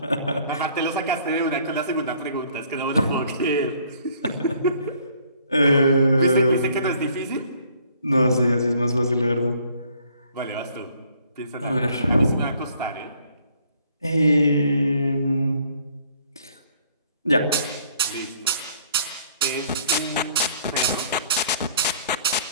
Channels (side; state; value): both; inverted; correlation -0.60